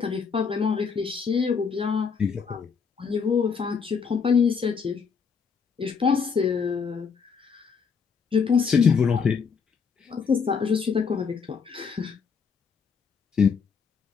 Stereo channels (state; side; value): quieter; right; 5.9 dB